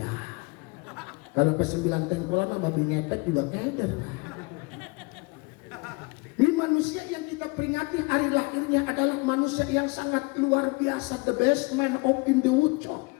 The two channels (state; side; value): quieter; right; 27.6 dB